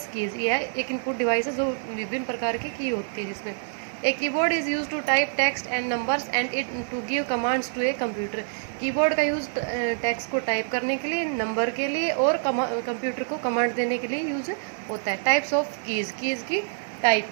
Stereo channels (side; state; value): left; silent; digital silence